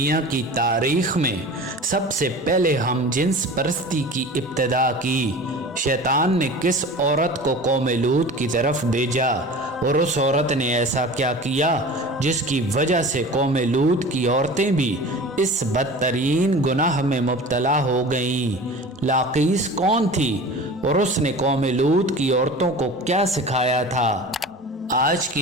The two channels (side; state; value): both; normal; correlation 0.37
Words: کی تاریخ میں سب سے پہلے ہم جنس پرستی کی ابتدا کی۔ شیطان نے کس عورت کو قوم لوط کی طرف بھیجا اور اس عورت نے ایسا کیا کیا جس کی وجہ سے قوم لوط کی عورتیں بھی اس بدترین گناہ میں مبتلا ہو گئیں؟ لاقیس کون تھی اور اس نے قوم لوط کی عورتوں کو کیا سکھایا تھا؟ آج